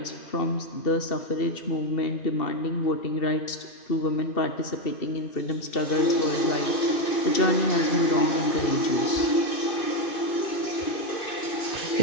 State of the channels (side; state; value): right; late; 2.5 ms